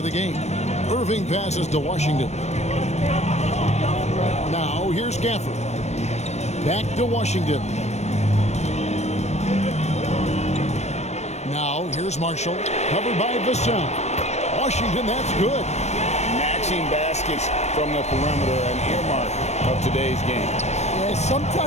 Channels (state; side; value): late; right; 0.32 ms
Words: the game. Irving passes to Washington. Now here's Gafford. Back to Washington. Now here's Marshall. Covered by Vassell. Washington, that's good. Matching baskets from the perimeter, an earmark of today's game. Yeah,